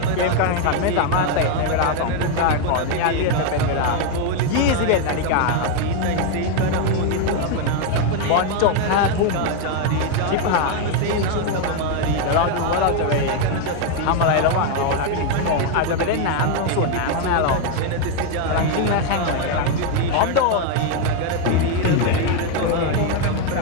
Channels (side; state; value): both; different; correlation 0.01